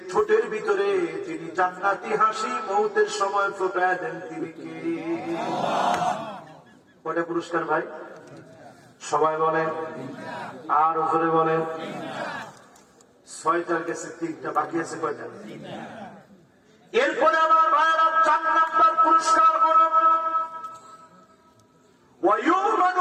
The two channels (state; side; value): identical; both; correlation 1.00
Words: ঠোঁটের ভিতরে যিনি জান্নাতি হাসি মৌতের সময় ফোটায় দেন তিনি কে? কয়টা পুরস্কার ভাই? সবাই বলেন, আর জোরে বলেন। 6টার গেছে, 3টা বাকি আছে। কয়টা? এরপরে আমার ভাইয়েরা 4 নম্বর পুরস্কার হল